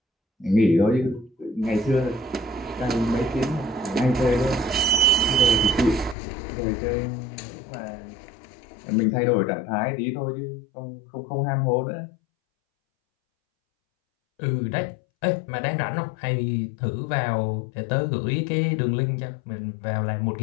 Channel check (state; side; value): drops out; right; at 6.2 s